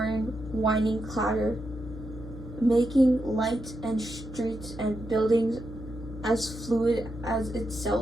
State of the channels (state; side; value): noise; left; hum, 11 dB below the sound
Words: whining clatter, making lights and streets and buildings as fluid as